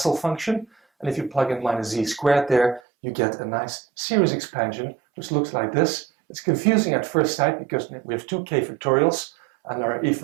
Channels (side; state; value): left; drops out; at 2.8 s